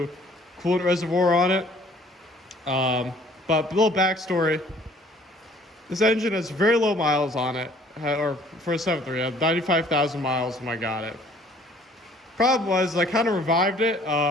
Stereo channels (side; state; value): both; normal; correlation 0.56